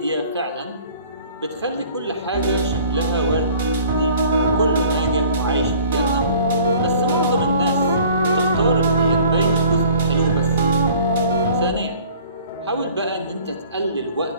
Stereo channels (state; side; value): inverted; both; correlation -0.51